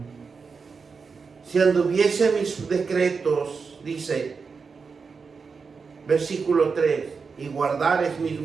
Si anduviese mis decretos, dice, versículo 3, y guardares mis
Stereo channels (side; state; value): left; quieter; 5.2 dB